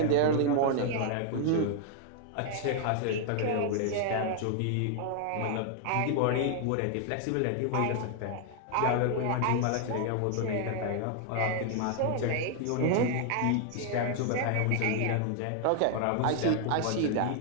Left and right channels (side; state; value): both; different; correlation 0.00